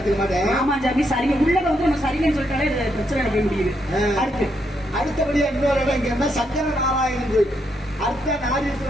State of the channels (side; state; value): both; normal; correlation 0.78